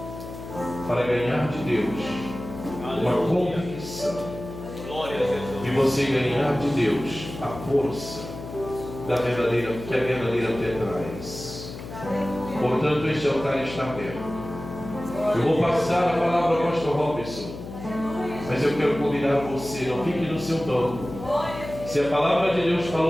para ganhar de Deus uma convicção e você ganhar de Deus a força da verdadeira, que a verdadeira fé traz. Portanto, este altar está aberto. Eu vou passar a palavra ao pastor Robson, mas eu quero convidar você, não fique no seu banco. Se a palavra de Deus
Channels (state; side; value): noise; left; hum, 11 dB below the sound